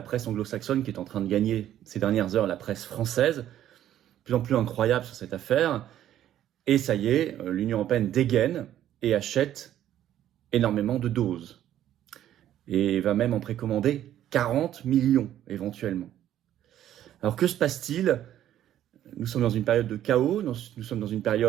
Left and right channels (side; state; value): left; quieter; 11.8 dB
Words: presse anglo-saxonne qui est en train de gagner ces dernières heures la presse française. De plus en plus incroyable sur cette affaire. Et ça y est, l'Union européenne dégaine et achète énormément de doses. Et va même en précommander 40 millions éventuellement. Alors que se passe-t-il? Nous sommes dans une période de chaos, nous sommes dans une